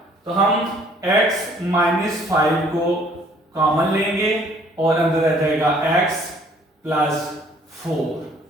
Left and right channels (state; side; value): normal; both; correlation 0.59